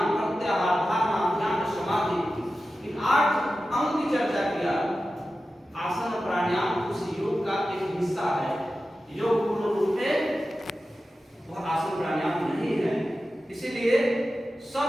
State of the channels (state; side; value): normal; both; correlation 0.93